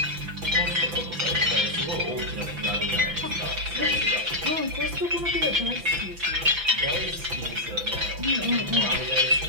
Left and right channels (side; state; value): left; late; 5.9 ms